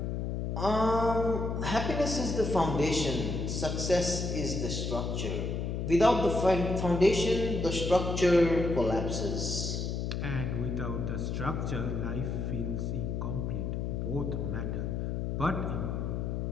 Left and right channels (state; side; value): noise; left; hum, 2 dB below the sound